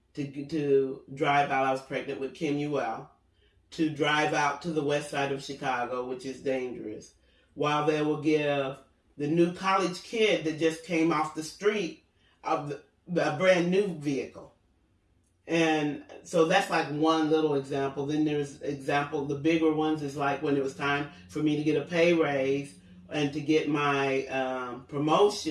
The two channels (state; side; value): identical; both; correlation 1.00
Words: to drive out. I was pregnant with Kim Ewell, to drive out to the west side of Chicago, which is dangerous, while they will give the new college kid that just came off the street of a brand new vehicle. And so that's like one little example. Then there's the bigger ones is like when it was time for me to get a pay raise and to get my